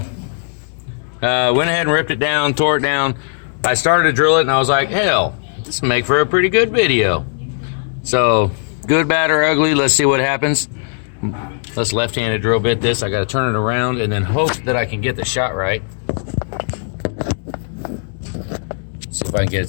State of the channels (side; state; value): right; silent; digital silence